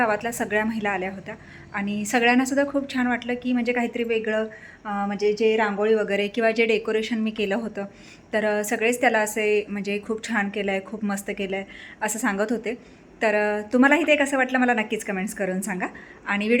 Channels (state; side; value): identical; both; correlation 1.00